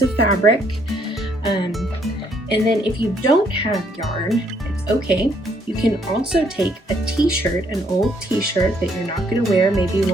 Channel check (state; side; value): normal; both; correlation 0.68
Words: of fabric. And then if you don't have yarn, it's okay. You can also take a t-shirt, an old t-shirt that you're not going to wear, maybe